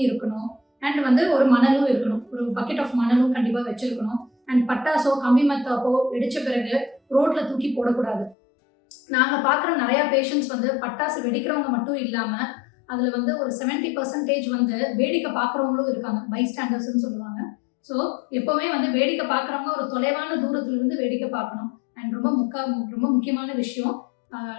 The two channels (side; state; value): right; drops out; at 8.3 s